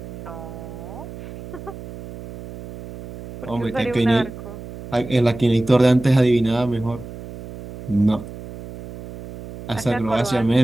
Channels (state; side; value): noise; right; hum, 13 dB below the sound